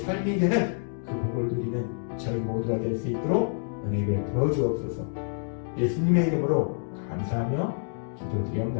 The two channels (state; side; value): silent; right; digital silence